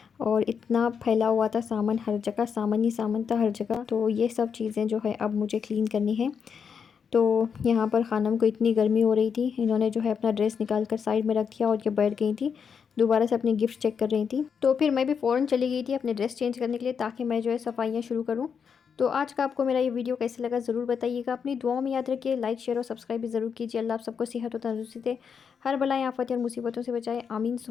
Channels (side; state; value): right; quieter; 6.6 dB